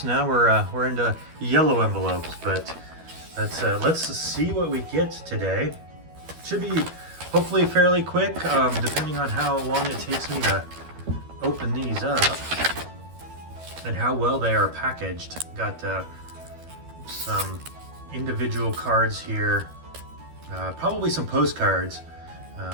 Now we're into yellow envelopes, but let's see what we get today. Should be hopefully fairly quick, depending on how long it takes me to open these up and how well they are packaged. Got some individual cards here, probably some postcards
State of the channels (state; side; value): late; left; 12 ms